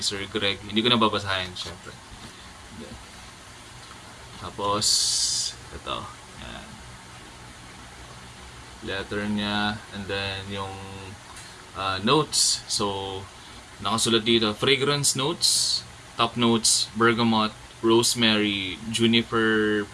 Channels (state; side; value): identical; both; correlation 1.00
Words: Greg, hindi ko na babasahin syempre. Tapos ito, yan, letter niya, and then yung notes. So nakasulat dito, fragrance notes, top notes bergamot, rosemary, juniper